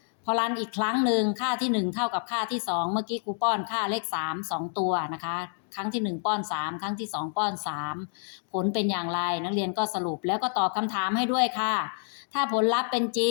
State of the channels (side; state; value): right; silent; 57 dB below the other